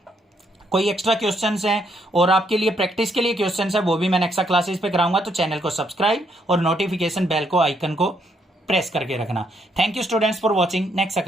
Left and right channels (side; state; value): both; normal; correlation 0.73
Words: कोई एक्स्ट्रा क्वेश्चंस हैं और आपके लिए प्रैक्टिस के लिए क्वेश्चंस है, वो भी मैं एक्स्ट्रा क्लासेस पे कराऊंगा, तो चैनल को सब्सक्राइब और नोटिफिकेशन बेल को आइकन को प्रेस करके रखना। Thank you students for watching next